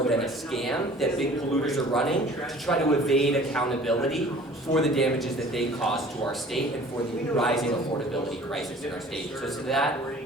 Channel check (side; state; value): both; normal; correlation 0.49